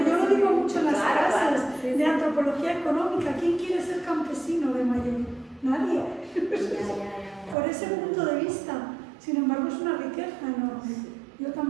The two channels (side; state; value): left; drops out; at 7.6 s